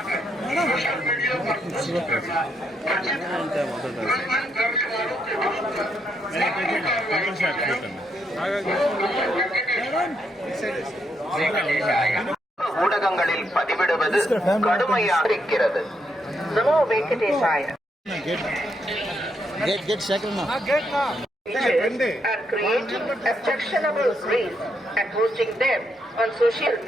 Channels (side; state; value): both; normal; correlation 0.78